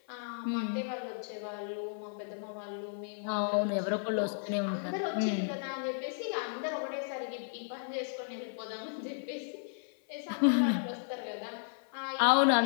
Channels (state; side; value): silent; right; 55 dB below the other